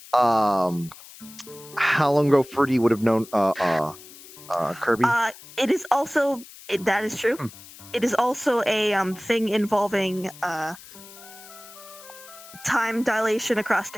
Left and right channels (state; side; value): noise; left; hiss, 19 dB below the sound